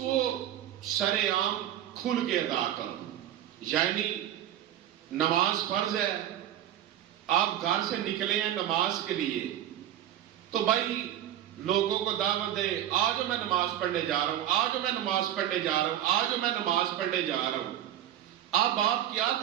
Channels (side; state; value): left; quieter; 11.6 dB